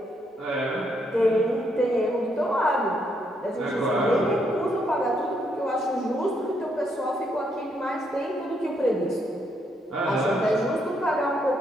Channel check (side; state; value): both; normal; correlation 0.75